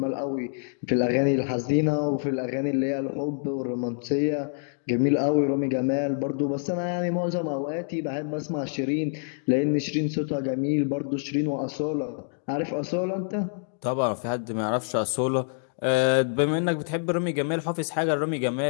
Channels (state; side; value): silent; right; digital silence